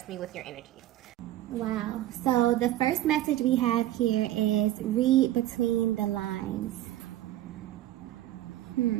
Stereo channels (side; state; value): left; quieter; 14.2 dB